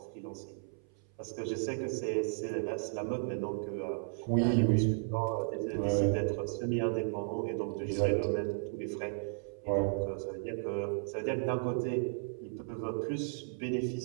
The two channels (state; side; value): silent; left; 55 dB below the other